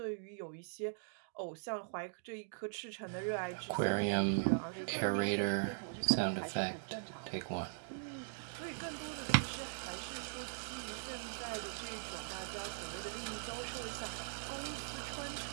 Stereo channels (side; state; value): left; silent; digital silence